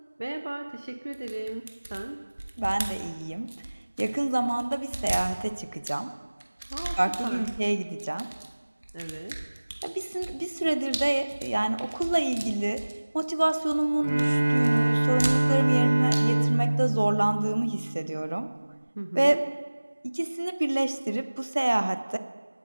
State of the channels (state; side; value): inverted; both; correlation -1.00